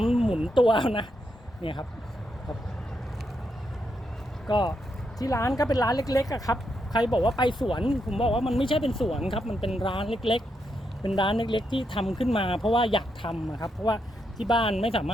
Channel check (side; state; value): both; normal; correlation 0.81